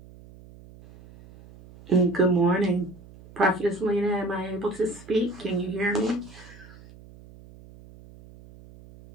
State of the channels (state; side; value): noise; right; hum, 21 dB below the sound